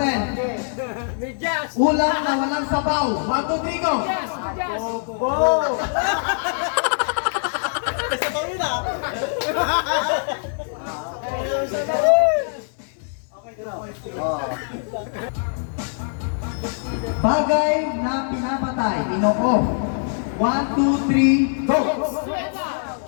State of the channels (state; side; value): silent; right; digital silence